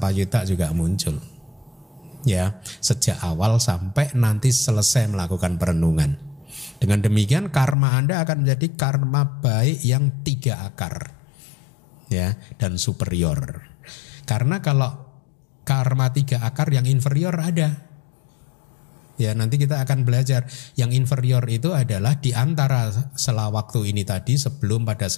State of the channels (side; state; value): right; drops out; at 7.8 s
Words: juga muncul. Ya, sejak awal sampai nanti selesai melakukan perenungan. Dengan demikian karma Anda akan menjadi karma baik yang 3 akar. ya, dan superior. Karena kalau karma 3 akar yang inferior ada. Ya, nanti kita akan belajar yang inferior itu adalah di antara sela waktu ini tadi, sebelum, pada